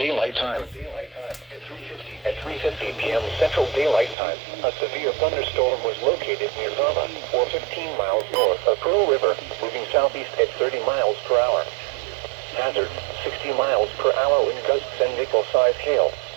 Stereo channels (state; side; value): drops out; left; at 4.2 s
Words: Time. At 3:50 p.m. Central Daylight Time, a severe thunderstorm was located near Burma, or 15 miles north of Pearl River, moving southeast at 30 miles per hour. Hazard, 60 miles per hour wind gusts and nickel-sized hail.